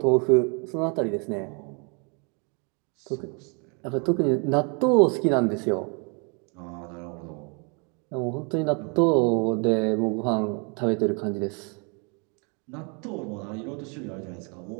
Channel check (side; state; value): left; quieter; 35.1 dB